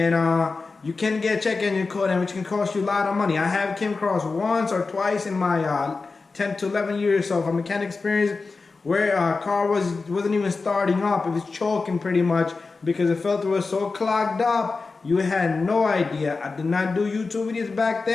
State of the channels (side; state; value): right; quieter; 4.1 dB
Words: you can get a check engine code, and which can cost you a lot of money. I have came across once or twice in my 10 to 11 years of mechanic experience where a car wasn't even starting up. It was choking pretty much because the filter was so clogged up. You had no idea. I did not do YouTube videos back